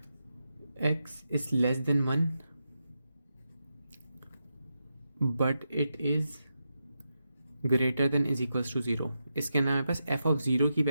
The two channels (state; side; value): inverted; both; correlation -0.87